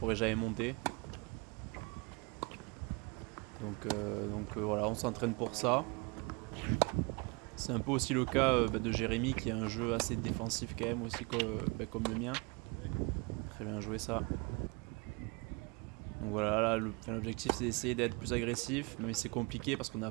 jamais monter. Donc voilà, on s'entraîne pour ça. C'est un peu aussi le cas de Jérémy qui a un jeu assez défensif quand même aussi comme le mien. Très bien joué ça. Donc voilà, là l'objectif c'est d'essayer d'être plus agressif, mais c'est compliqué parce qu'on n'a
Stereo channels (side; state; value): left; quieter; 29.1 dB